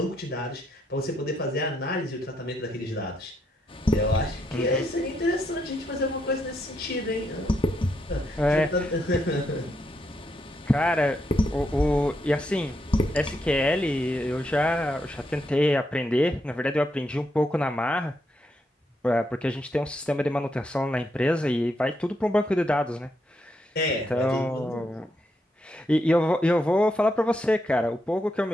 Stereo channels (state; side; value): normal; both; correlation 0.79